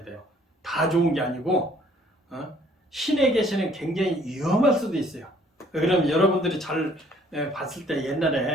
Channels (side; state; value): both; normal; correlation 0.60